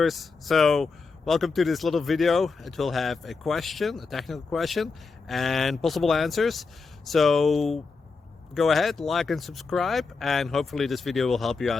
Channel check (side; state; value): right; quieter; 4.5 dB